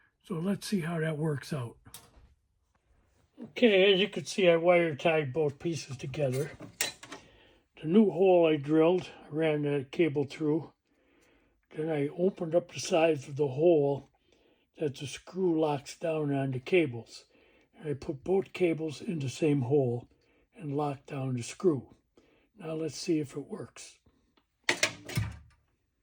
So let's see how that works out. Okay, as you can see, I wire tied both pieces together. The new hole I drilled, I ran the cable through. Then I opened up the sides of the hole that the screw locks down on the cables. And I put both cables in the same hole and locked down the screw. Now let's see if it works.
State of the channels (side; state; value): both; identical; correlation 1.00